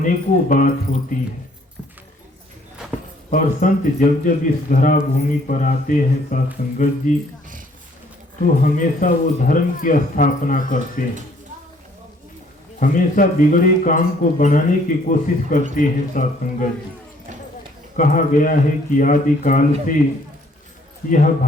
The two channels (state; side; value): normal; both; correlation 0.61